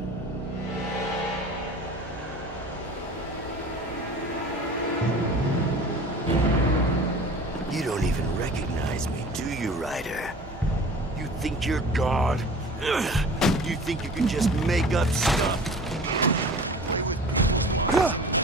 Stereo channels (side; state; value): both; normal; correlation 0.41